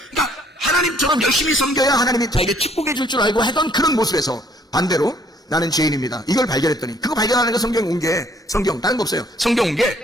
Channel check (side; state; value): both; normal; correlation 0.62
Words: 그러니까 하나님처럼 열심히 섬겨야 하나님이 자에게 축복해 줄 줄 알고 하던 그런 모습에서 반대로 나는 죄인입니다. 이걸 발견했더니 그거 발견하는 거 성경에 온 게 성경 다른 거 없어요. 성경 온